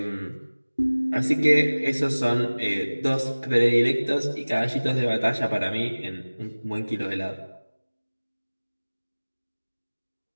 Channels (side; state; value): both; inverted; correlation -1.00